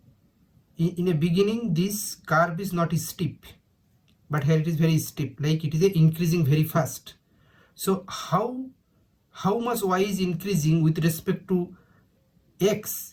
in a beginning this curve is not steep, but here it is very steep, like it is increasing very fast. So how much y is increasing with respect to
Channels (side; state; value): both; identical; correlation 1.00